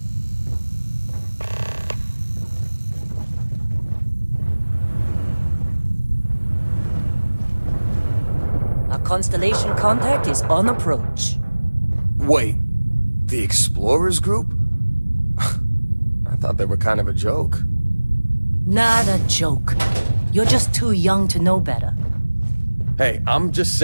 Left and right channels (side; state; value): both; inverted; correlation -1.00